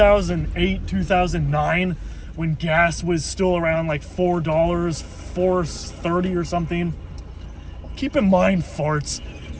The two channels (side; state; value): both; identical; correlation 1.00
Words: 2009, when gas was still around like $4, $4.30 or something. Keep in mind, farts,